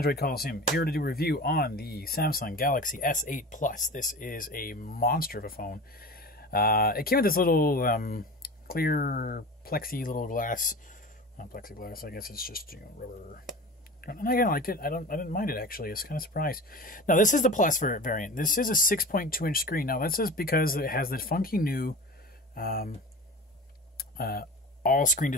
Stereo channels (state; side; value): normal; both; correlation 0.33